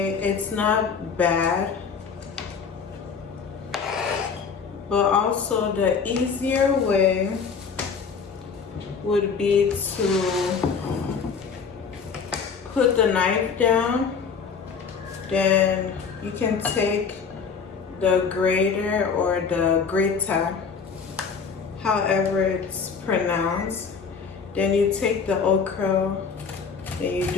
it's not bad. But also the easier way would be to put the knife down. Then you can take the grater or the grater, however it's pronounced. Then you take the okra and you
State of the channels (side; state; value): right; quieter; 5.8 dB